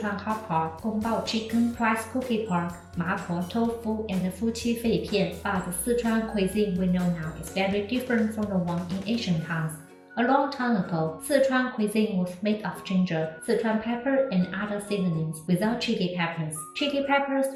hot pot, Gongbao chicken, rice cookie pork, mapo tofu, and Fuqi fei pian. But the Sichuan cuisine we know now is very different from the one in Asian towns. A long time ago, Sichuan cuisine was made of ginger, Sichuan pepper, and other seasonings without chili peppers. Chili peppers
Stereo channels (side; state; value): both; identical; correlation 1.00